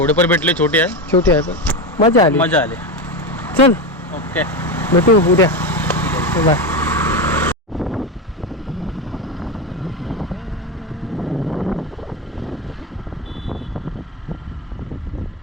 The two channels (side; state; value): both; normal; correlation 0.16